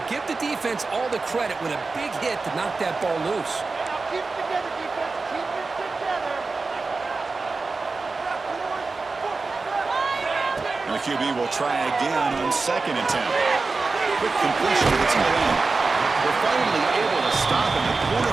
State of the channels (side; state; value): left; quieter; 3.9 dB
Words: give the defense all the credit with a big hit to knock that ball loose. Keep it together, defense. Keep it together. And the QB will try again on second and 10. Quick completion to the tight end. We're finally able to stop him. The